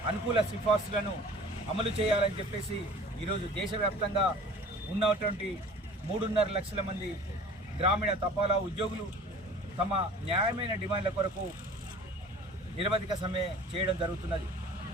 అనుకూల సిఫార్సులను అమలు చేయాలని చెప్పేసి ఈరోజు దేశవ్యాప్తంగా ఉన్నటువంటి 3.5 లక్షల మంది గ్రామీణ తపాలా ఉద్యోగులు తమ న్యాయమైన డిమాండ్ల కొరకు నిరవధిక సమ్మె చేయడం జరుగుతున్నది.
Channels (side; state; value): both; normal; correlation 0.45